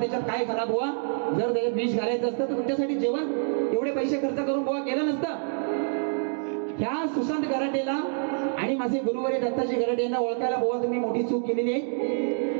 काय घाला. बुवा जर त्याच्यात विष घालायचं असतं तर तुमच्यासाठी जेवण एवढे पैसे खर्च करून बुवा केलं नसतं. ह्या सुशांत गराटेला आणि माझे गुरुवारी दत्ताजी गराटे यांना ओळखायला बुवा तुम्ही मोठी चूक केलेली आहे.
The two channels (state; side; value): silent; left; digital silence